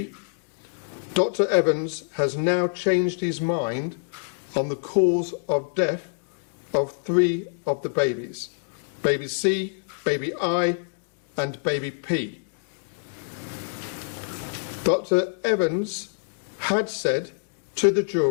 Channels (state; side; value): silent; right; digital silence